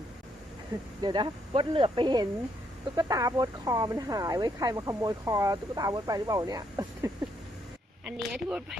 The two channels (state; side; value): normal; both; correlation 0.74